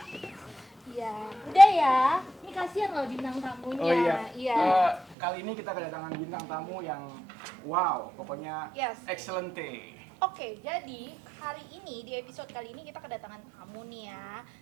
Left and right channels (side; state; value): left; drops out; at 5.2 s